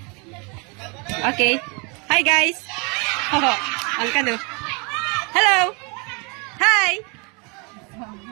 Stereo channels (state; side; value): quieter; left; 31.4 dB